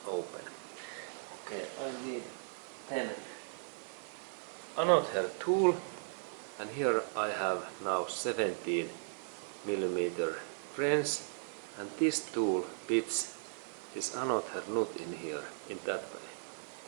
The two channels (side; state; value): left; silent; 53 dB below the other